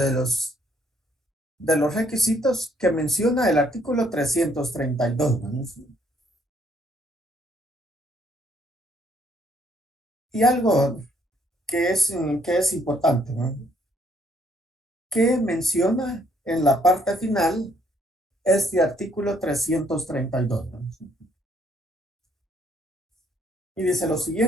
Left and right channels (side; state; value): both; normal; correlation 0.68